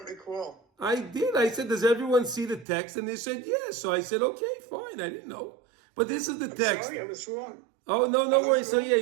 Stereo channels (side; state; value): left; drops out; at 2.7 s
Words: recall. I did. I said, "Does everyone see the text?" And they said, "Yes." So I said, "Okay, fine." I didn't know, but this is the text. Sorry, I was wrong. Oh, no worries. So yeah,